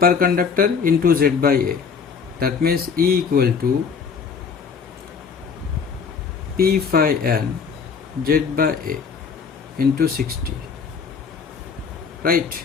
conductor into Z by A. That means E equal to P phi n Z by A into 60, right?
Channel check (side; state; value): right; quieter; 6.0 dB